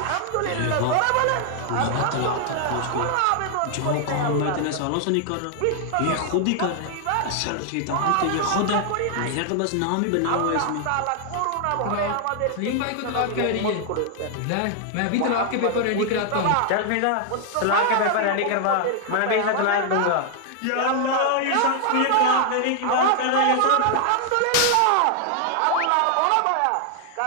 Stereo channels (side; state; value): both; different; correlation 0.00